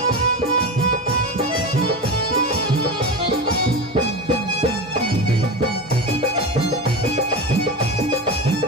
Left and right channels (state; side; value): normal; both; correlation 0.24